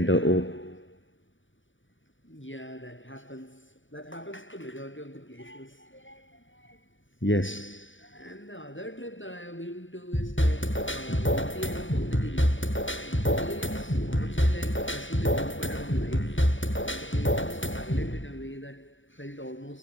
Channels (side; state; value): right; late; 0.56 ms